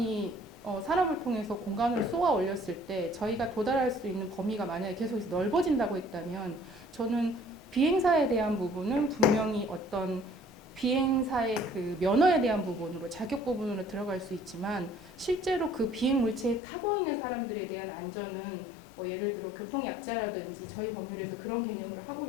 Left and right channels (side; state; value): right; drops out; at 16.6 s